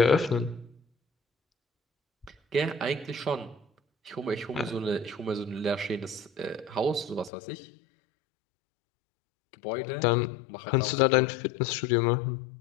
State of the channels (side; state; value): right; drops out; at 7.3 s